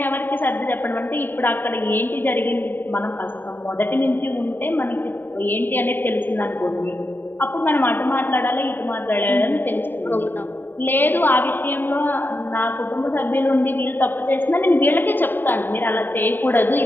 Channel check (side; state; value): right; late; 0.093 ms